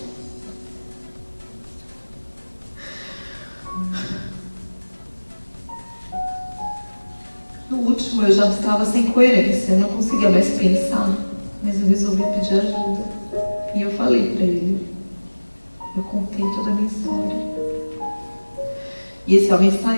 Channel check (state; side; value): inverted; both; correlation -1.00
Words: No último, eu já estava sem coerência, eu não conseguia mais pensar, mas eu resolvi pedir ajuda. E eu falei para ele, eu contei toda a minha história. E esse homem